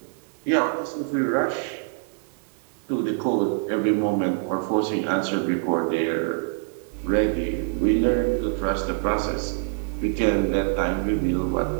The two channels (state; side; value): silent; left; 62 dB below the other